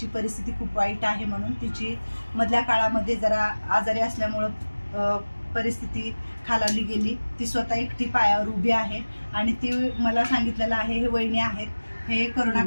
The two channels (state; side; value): inverted; both; correlation -1.00